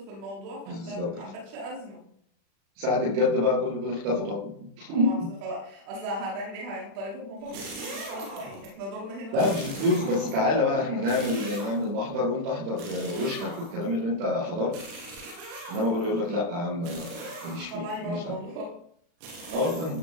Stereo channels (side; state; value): left; late; 35 ms